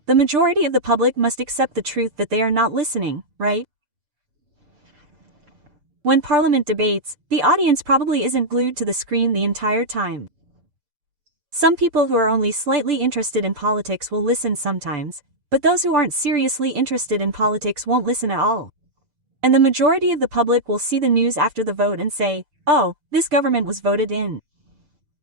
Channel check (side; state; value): left; late; 6.8 ms